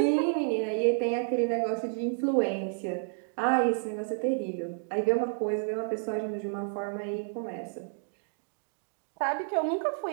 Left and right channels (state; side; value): silent; left; digital silence